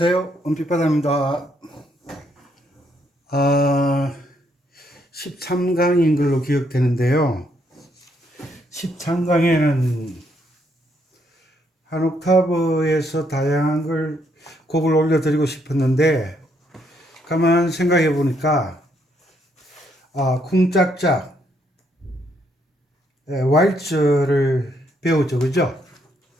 은빛바다입니다. 13강인 걸로 기억되는데요. 13강에는 한 옥타브에서 다양한 곡을 올려드리고 싶었는데, 가만 생각해 보니까, 쿵짝짝, 왈츠를 배우죠. 그죠?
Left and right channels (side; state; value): both; normal; correlation 0.73